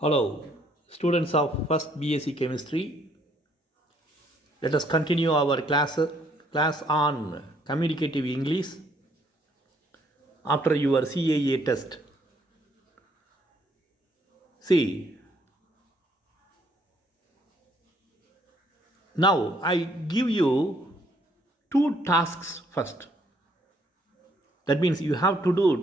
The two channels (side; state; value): both; normal; correlation 0.67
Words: Hello, students of first BSc Chemistry. Let us continue our class on communicative English after your CAA test. See, now I give you two tasks first. That means you have to